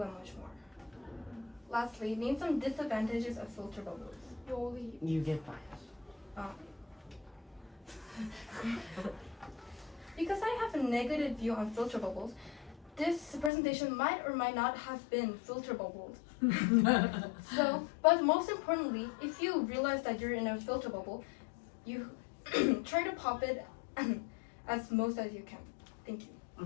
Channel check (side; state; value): right; drops out; at 13.5 s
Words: and much more. Lastly, name some disadvantages of filter bubbles. You get biased. Because I have a negative view on filter bubbles, this presentation might or might not have been filter bubbled. So, but most importantly, if you realize that you're in a filter bubble, you try to pop it as most as you can. Thank you.